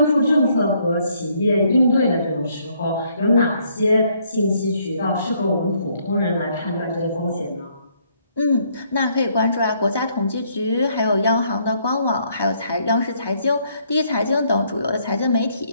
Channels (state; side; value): inverted; both; correlation -0.69